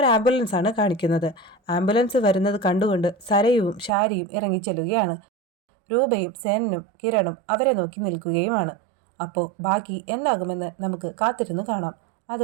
ആംബുലൻസാണ് കാണിക്കുന്നത്. ആംബുലൻസ് വരുന്നത് കണ്ടുകൊണ്ട് സരയുവും ഷാരിയും ഇറങ്ങിച്ചെല്ലുകയാണ്. രൂപയും സേനനും കിരണും അവരെ നോക്കി നിൽക്കുകയുമാണ്. അപ്പോൾ ബാക്കി എന്താകുമെന്ന് നമുക്ക് കാത്തിരുന്നു കാണാം.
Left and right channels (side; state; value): left; drops out; at 3.9 s